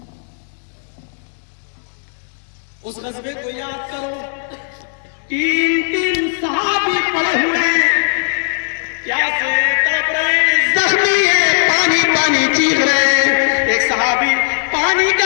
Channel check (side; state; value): right; silent; 68 dB below the other